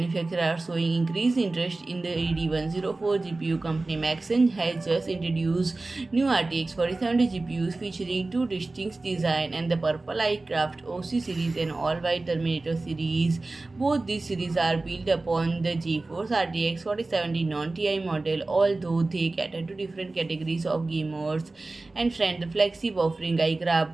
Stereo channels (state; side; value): quieter; left; 3.2 dB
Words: are showing increased interest in the AD104 GPU company. MaxSun has just introduced new RTX 4070 GPUs featuring two distinct designs and the purple iCraft OC series and all-white Terminator series. Both these series are built upon the GeForce RTX 4070 non-TI model, although they cater to different categories of gamers. And friend, the flagship offering iCraft